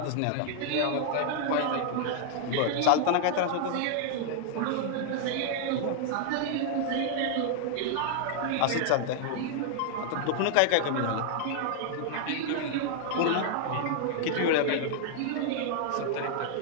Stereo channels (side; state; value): both; different; correlation 0.00